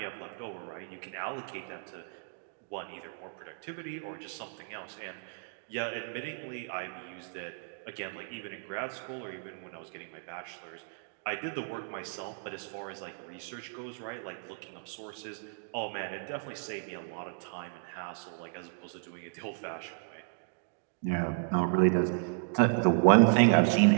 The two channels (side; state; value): left; silent; digital silence